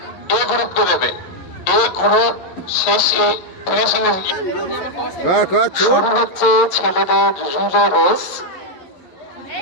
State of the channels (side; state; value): right; late; 11 ms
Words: এ গ্রুপকে দেবে। এ গ্রুপ শেষে ফিনিশিং শুরু হচ্ছে ছেলেদের রিলে রেস।